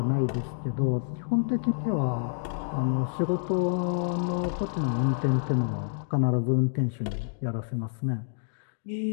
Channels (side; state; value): right; silent; digital silence